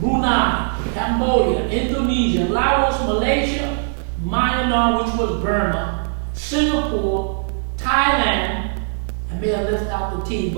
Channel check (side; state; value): left; silent; 62 dB below the other